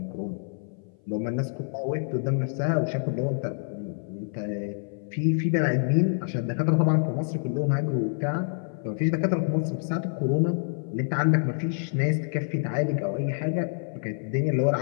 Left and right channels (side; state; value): right; silent; 57 dB below the other